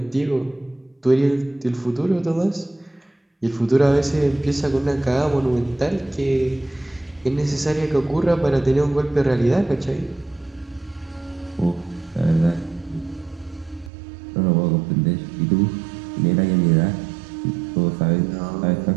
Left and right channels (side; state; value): left; drops out; at 13.9 s